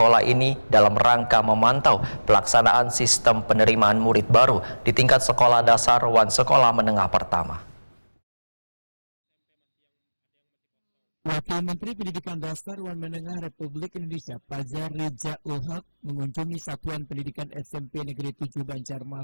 ini dalam rangka memantau pelaksanaan sistem penerimaan murid baru di tingkat sekolah dasar Wan Sekolah Menengah Pertama. Wakil Menteri Pendidikan Dasar Wan Menengah Republik Indonesia Fajar Rijaul Haq mengunjungi Satuan Pendidikan SMP Negeri 7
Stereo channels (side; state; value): both; inverted; correlation -1.00